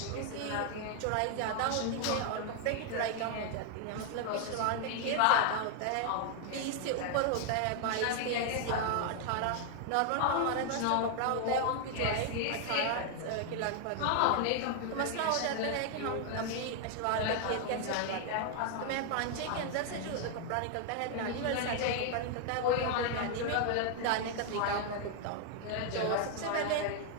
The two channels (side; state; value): both; different; correlation 0.00